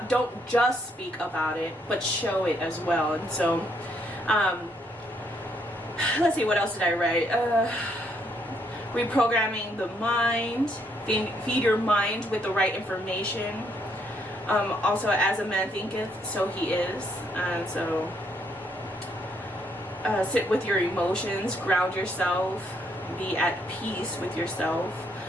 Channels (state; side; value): normal; both; correlation 0.72